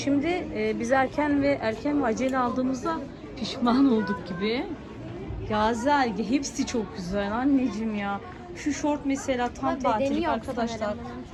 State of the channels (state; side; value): identical; both; correlation 1.00